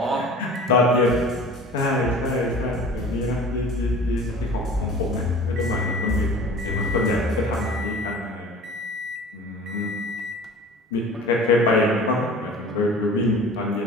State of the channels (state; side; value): normal; both; correlation 0.42